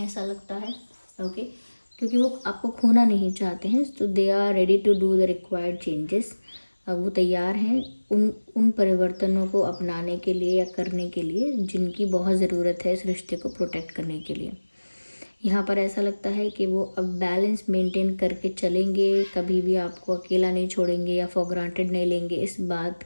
ऐसा लगता है। ओके, क्योंकि वो आपको खोना नहीं चाहते हैं, तो they are ready to do the required changes. वो तैयार हैं उन परिवर्तनों को अपनाने के लिए या करने के लिए जिनकी बहुत ज़रूरत है इस रिश्ते को प्रोटेक्ट करने के लिए। यहाँ पर ऐसा लगता है कि वो अब बैलेंस मेंटेन करके चलेंगे, कभी भी आपको अकेला नहीं छोड़ेंगे या फॉर ग्रांटेड नहीं लेंगे। इस बात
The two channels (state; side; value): inverted; both; correlation -1.00